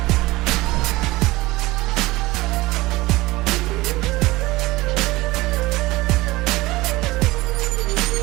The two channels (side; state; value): left; quieter; 19.6 dB